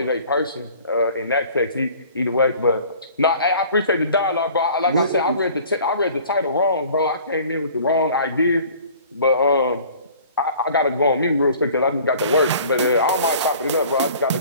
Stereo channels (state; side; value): inverted; both; correlation -0.49